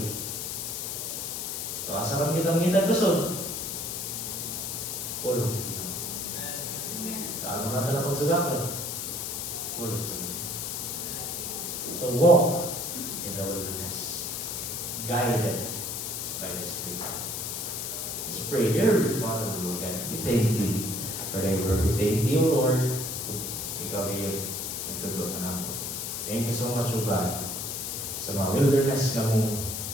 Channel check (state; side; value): noise; left; hiss, 4 dB below the sound